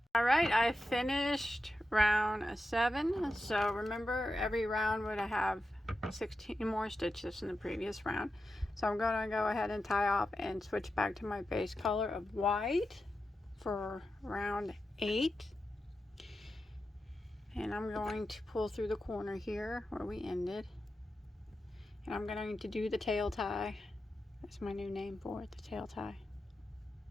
Alright, I finished round 7. So remember, every round would have 16 more stitches in the previous round. So I'm going to go ahead and tie off and switch back to my base color of white for round 8. And I'm going to pull through the corner here where we ended, and I'm going to do the tail tie. That's my new name for it, the tail tie.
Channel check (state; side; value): normal; both; correlation 0.90